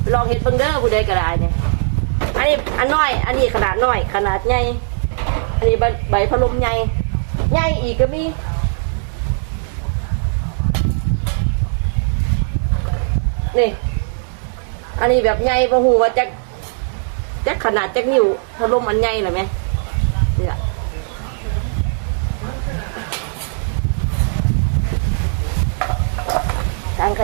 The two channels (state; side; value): silent; left; digital silence